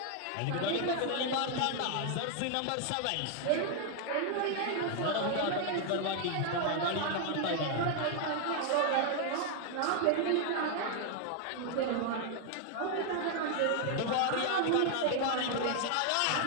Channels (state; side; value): different; both; correlation 0.00